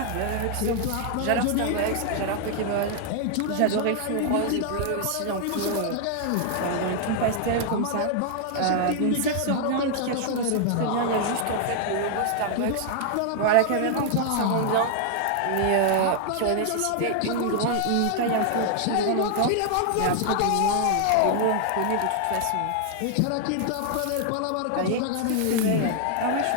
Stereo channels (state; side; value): different; both; correlation 0.00